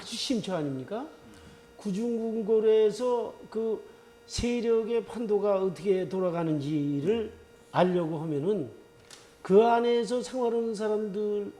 심처 아닙니까? 구중궁궐에서 그 세력의 판도가 어떻게 돌아가는지를 알려고 하면은 그 안에서 생활하는 사람들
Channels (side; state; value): both; identical; correlation 1.00